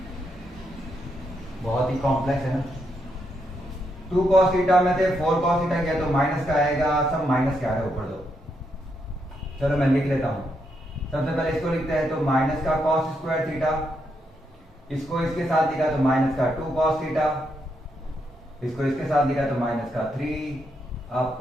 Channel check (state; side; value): normal; both; correlation 0.80